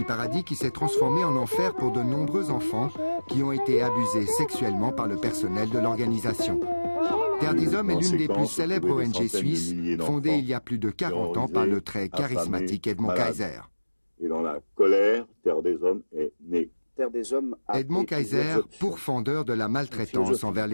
paradis qui s'est transformé en enfer pour de nombreux enfants qui ont été abusés sexuellement par le personnel de l'organisation. Terre des Hommes est l'une des plus célèbres ONG suisses, fondée il y a plus de 40 ans par le très charismatique Edmond Kaiser. Et dans la colère, Terre des Hommes est née. Edmond Kaiser, pourfendeur de la maltraitance envers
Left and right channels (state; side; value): inverted; both; correlation -1.00